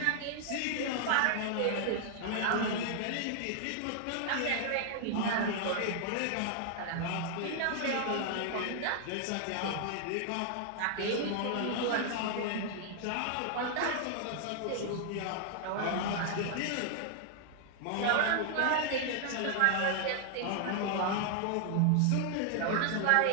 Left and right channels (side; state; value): both; different; correlation 0.00